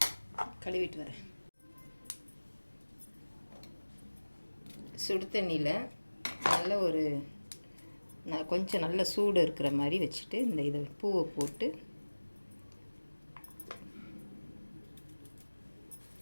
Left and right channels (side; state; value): both; inverted; correlation -1.00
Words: கழுவிட்டு வரேன். சுடு தண்ணியில் கொஞ்சம் நல்ல சூடு இருக்கிற மாதிரி வச்சுட்டு இதை பூவை போட்டு